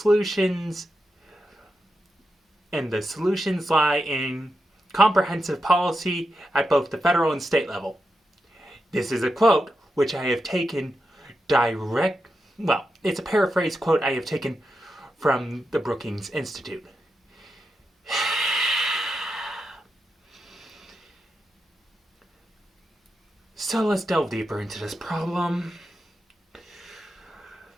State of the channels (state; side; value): normal; both; correlation 0.87